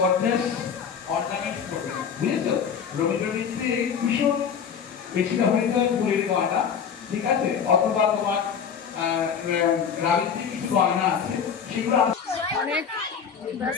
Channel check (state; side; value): quieter; right; 7.2 dB